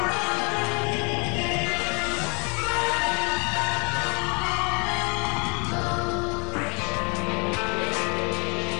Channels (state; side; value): quieter; right; 32.6 dB